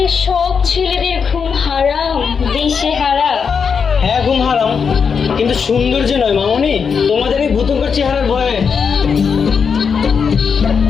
সব ছেলেদের ঘুম হারাম, দিশে হারা। হ্যাঁ, ঘুম হারাম, কিন্তু সৌন্দর্য নয় মামনি, তোমাদের এই ভূতঙ্কর চেহারার ভয়ে।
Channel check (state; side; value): quieter; right; 6.2 dB